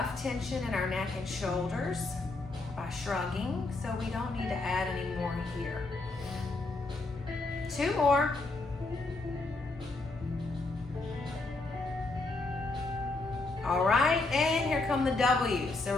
tension in our neck and shoulders by shrugging, so we don't need to add any more here. 2 more. All right, and here come the W's. So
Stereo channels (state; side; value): quieter; right; 3.3 dB